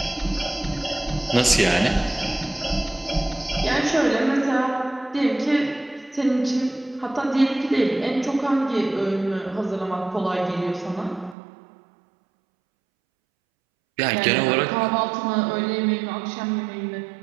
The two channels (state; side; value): drops out; left; at 11.4 s